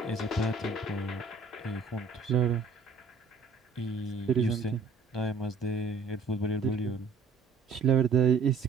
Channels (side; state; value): left; quieter; 4.4 dB